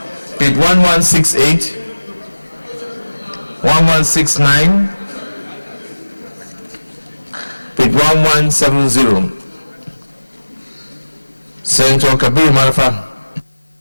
page 1168, 1169, page 1170. Senator Kabir Marfa.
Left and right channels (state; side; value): inverted; both; correlation -1.00